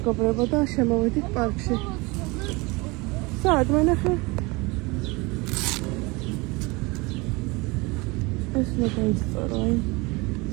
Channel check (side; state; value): left; quieter; 25.2 dB